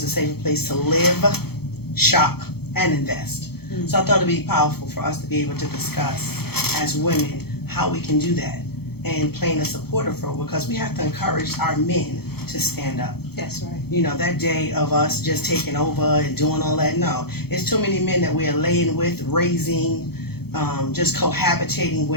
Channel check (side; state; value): right; late; 0.96 ms